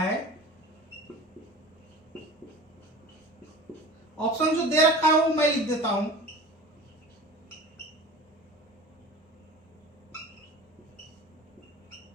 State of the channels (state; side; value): normal; both; correlation 0.38